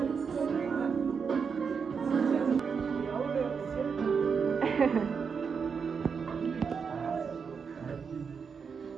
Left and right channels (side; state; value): left; quieter; 6.0 dB